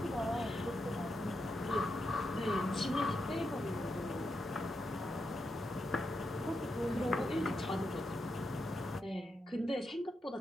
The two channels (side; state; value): both; normal; correlation 0.85